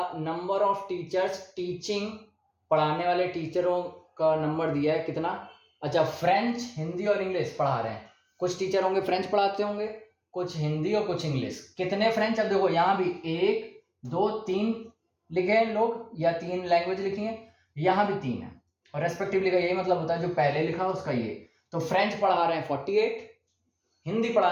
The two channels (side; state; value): both; identical; correlation 1.00